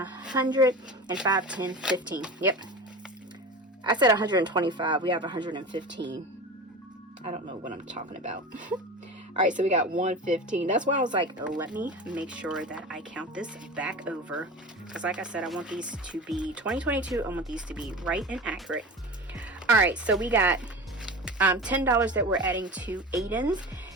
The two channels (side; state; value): both; normal; correlation 0.31